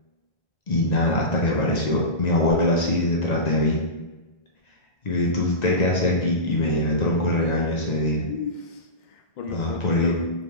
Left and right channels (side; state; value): right; late; 1.9 ms